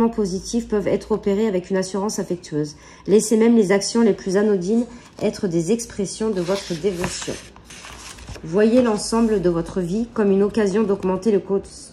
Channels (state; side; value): identical; both; correlation 1.00